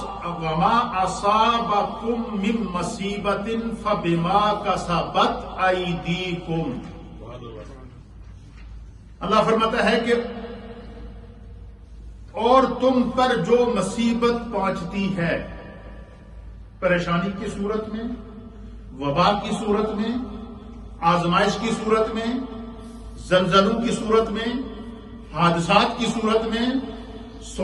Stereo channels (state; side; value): identical; both; correlation 1.00